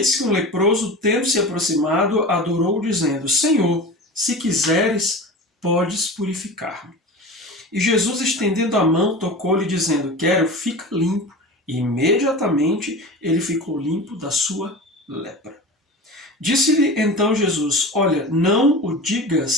que um leproso, tendo se aproximado, adorou, dizendo: Senhor, se quiseres, podes purificar-me. E Jesus, estendendo a mão, tocou-lhe, dizendo: Quero, fica limpo. E imediatamente ele ficou limpo da sua lepra. Disse-lhe então Jesus: Olha, não o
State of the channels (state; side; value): normal; both; correlation 0.32